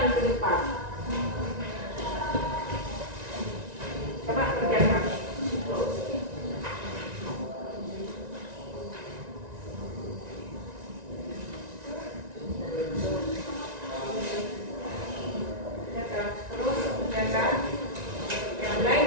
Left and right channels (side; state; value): left; late; 1.9 ms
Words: depan. Coba kerjakan. Terus kerjakan yang lain